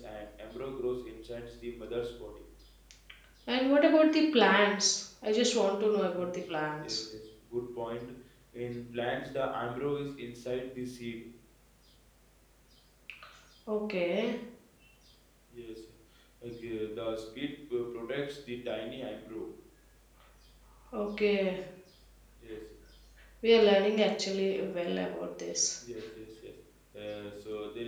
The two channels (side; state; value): both; identical; correlation 1.00